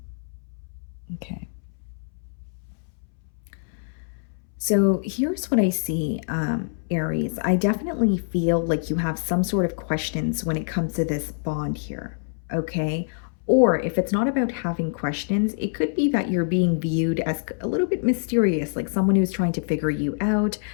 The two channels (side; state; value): right; silent; 62 dB below the other